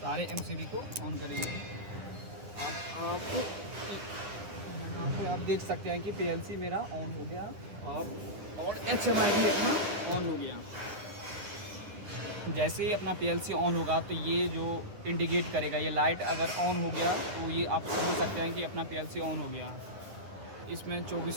एमसीबी को ऑन करेंगे। आप यहाँ पे आप देख सकते हैं कि पीएलसी मेरा ऑन हो गया और एचएमआई भी अपना ऑन हो गया। जैसे ही अपना पीएलसी ऑन होगा तो ये जो इंडिकेट करेगा, ये लाइट अगर ऑन हो गया तो ये आप समझ सकते हैं कि अपना पीएलसी ऑन हो गया। इसमें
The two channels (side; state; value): left; late; 9.9 ms